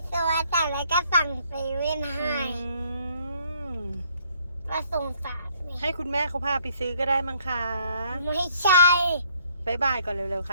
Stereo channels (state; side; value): inverted; both; correlation -0.65